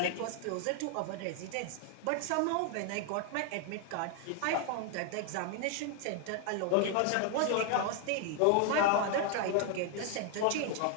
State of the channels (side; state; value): both; different; correlation 0.00